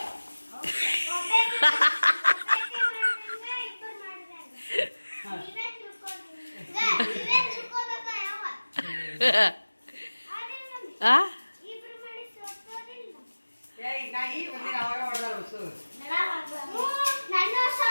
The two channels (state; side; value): inverted; both; correlation -1.00